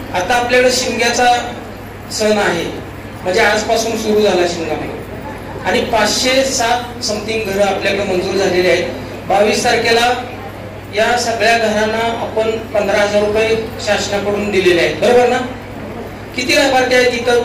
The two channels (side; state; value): both; identical; correlation 1.00